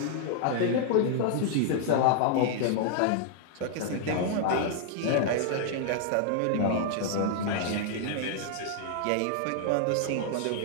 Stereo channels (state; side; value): different; both; correlation 0.00